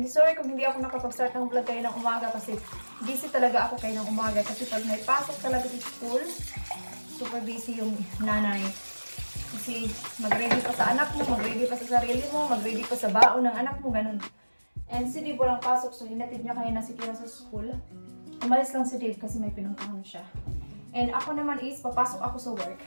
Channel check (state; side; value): inverted; both; correlation -1.00